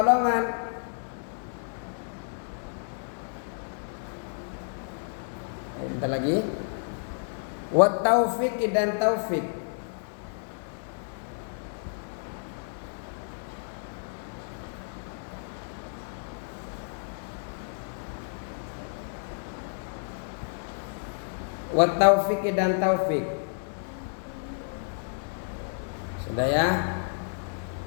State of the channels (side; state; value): right; silent; digital silence